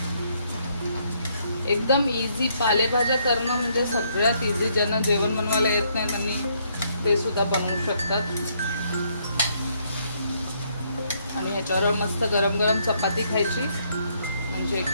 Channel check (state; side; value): inverted; both; correlation -0.71